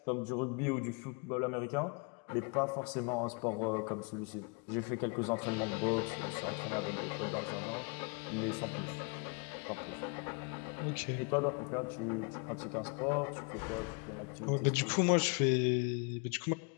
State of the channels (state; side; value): quieter; right; 33.8 dB